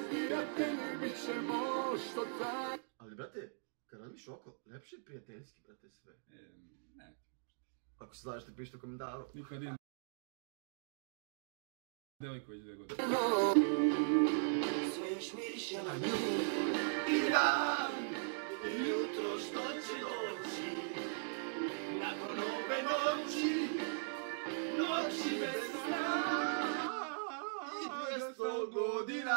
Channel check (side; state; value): left; silent; digital silence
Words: prijatelji bit ćemo, što taj. Ali brate, kad radiš oko, lepše je prijateljski, brate, sve. Ne. Ako se znaš, ti pišite u komentaru. Nikad idem. Devojko već 2 godine. Sve još miriše na nju. I dan, i jutro što će doći, nakon ove noći, noći bez sna. I 200